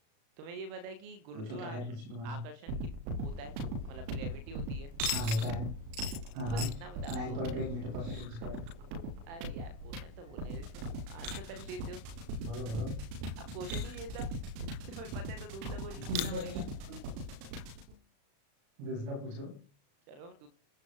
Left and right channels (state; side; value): late; left; 36 ms